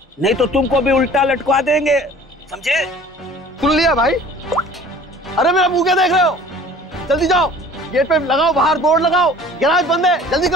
नहीं तो तुमको भी उल्टा लटका देंगे, समझे? सुन लिया भाई? अरे मेरा मुंह क्या देख रहे हो? जल्दी जाओ, गेट पे लगाओ, बाहर बोर्ड लगाओ, गैराज बंद है, जल्दी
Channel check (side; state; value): both; normal; correlation 0.48